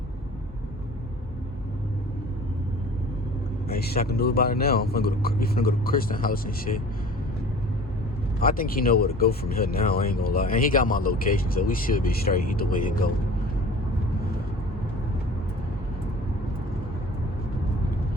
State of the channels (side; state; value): both; normal; correlation 0.44